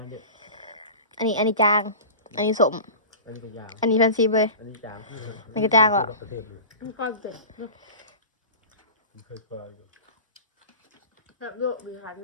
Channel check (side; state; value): both; inverted; correlation -0.34